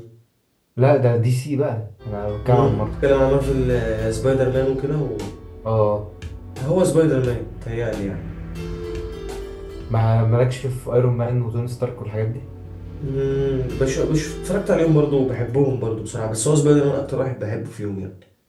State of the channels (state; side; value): identical; both; correlation 1.00